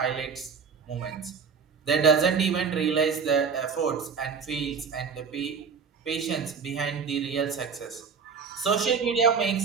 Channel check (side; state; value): left; quieter; 5.9 dB